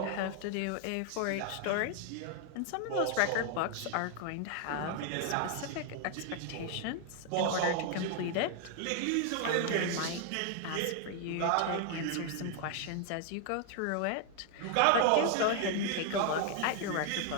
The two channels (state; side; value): different; both; correlation 0.00